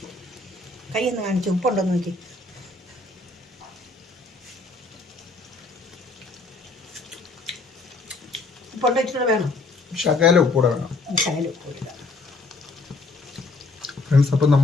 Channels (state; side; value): quieter; right; 3.4 dB